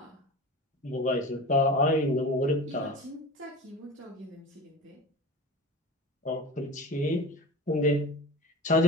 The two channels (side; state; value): both; normal; correlation 0.32